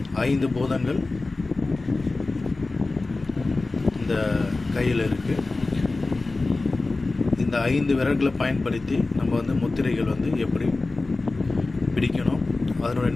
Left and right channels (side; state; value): right; quieter; 3.4 dB